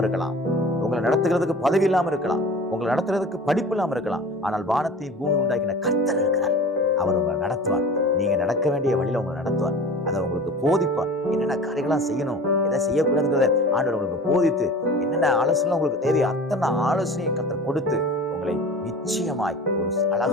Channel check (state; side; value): normal; both; correlation 0.39